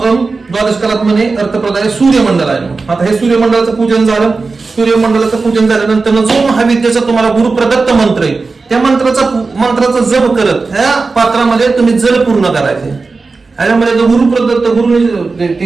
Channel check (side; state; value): left; quieter; 4.1 dB